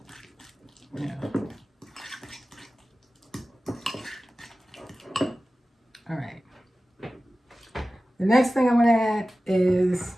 yeah. All right. The next thing I'm going to add is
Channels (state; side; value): normal; both; correlation 0.95